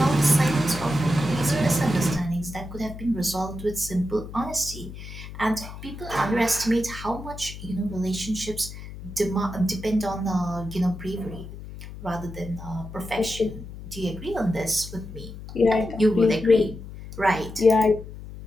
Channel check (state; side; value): noise; left; hum, 12 dB below the sound